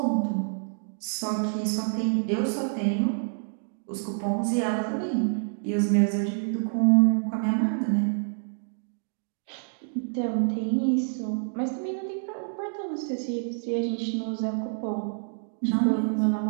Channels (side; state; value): left; silent; digital silence